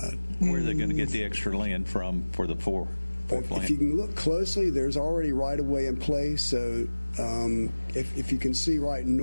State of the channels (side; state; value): both; inverted; correlation -1.00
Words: Where are they going to get the extra land from for the fourth lane? If you can look closely, there's already right-of-way in place. So if you can see right